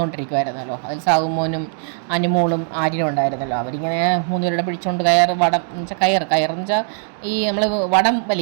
അതിൽ സാവുമോനും അനുമോളും ആര്യനും ഉണ്ടായിരുന്നല്ലോ. അവരിങ്ങനെ മൂന്നുപേരുടെ പിടിച്ചുകൊണ്ട് വടം എന്ന് വെച്ചാൽ കയറെന്ന് വെച്ചാൽ ഈ നമ്മൾ വടം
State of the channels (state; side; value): silent; left; digital silence